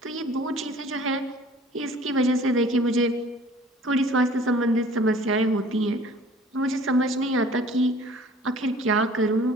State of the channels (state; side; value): normal; both; correlation 0.50